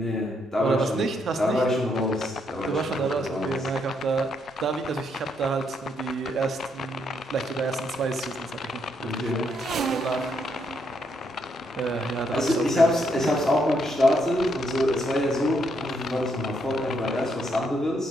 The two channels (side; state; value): both; normal; correlation 0.75